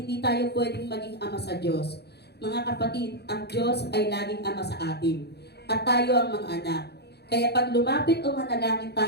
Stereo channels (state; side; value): late; right; 0.48 ms